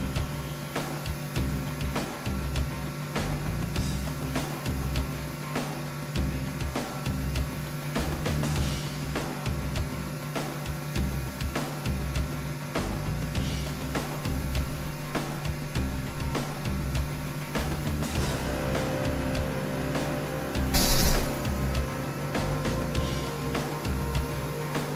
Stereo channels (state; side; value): identical; both; correlation 1.00